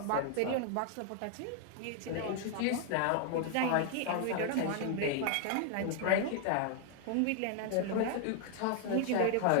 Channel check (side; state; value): both; different; correlation 0.00